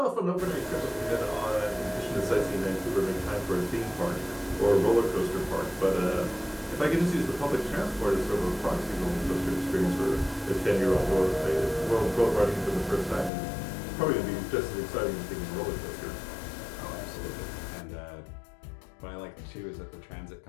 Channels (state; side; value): drops out; right; at 13.3 s